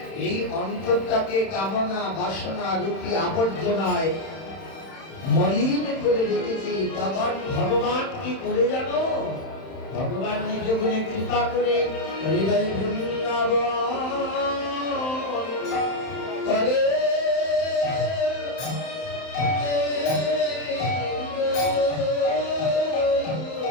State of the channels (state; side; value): late; right; 31 ms